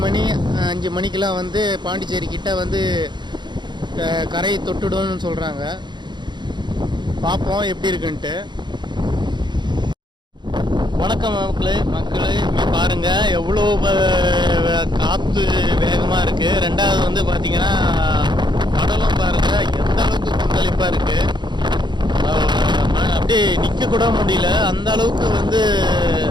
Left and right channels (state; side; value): late; left; 0.22 ms